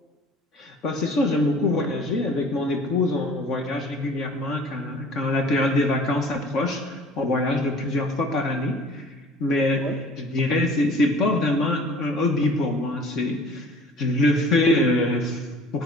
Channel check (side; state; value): both; normal; correlation 0.48